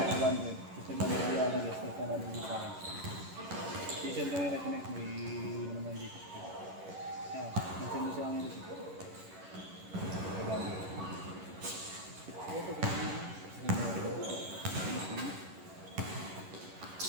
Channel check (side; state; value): left; late; 11 ms